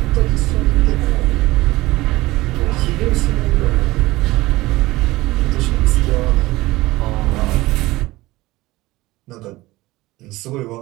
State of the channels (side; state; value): left; quieter; 19.1 dB